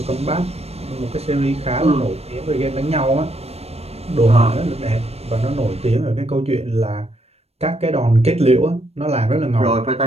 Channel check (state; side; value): late; left; 0.30 ms